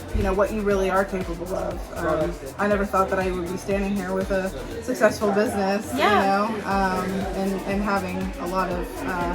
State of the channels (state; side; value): identical; both; correlation 1.00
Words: what you really are capable of. I never thought that I would be standing here with a successful business, and having a lot of